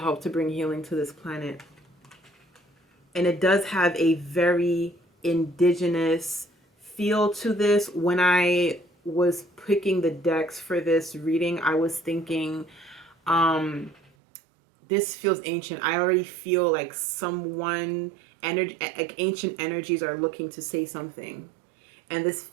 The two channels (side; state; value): left; drops out; at 14.1 s